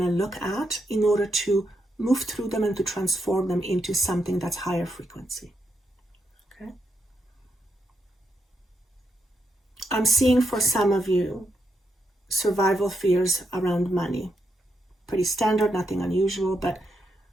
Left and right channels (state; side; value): normal; both; correlation 0.81